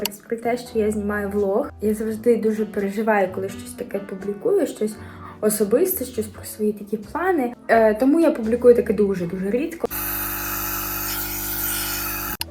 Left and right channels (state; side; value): identical; both; correlation 1.00